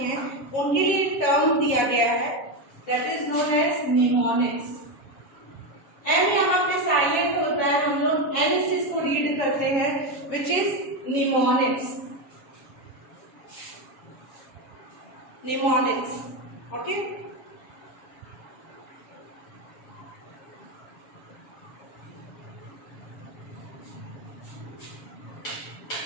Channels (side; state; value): right; late; 7.4 ms